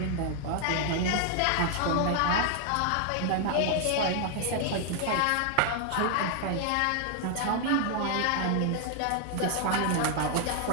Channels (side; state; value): both; different; correlation 0.00